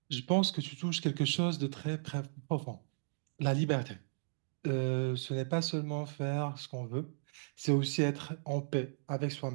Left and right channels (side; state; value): left; silent; digital silence